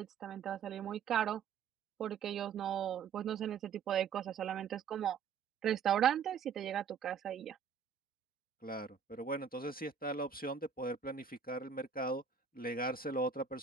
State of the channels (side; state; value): left; quieter; 6.8 dB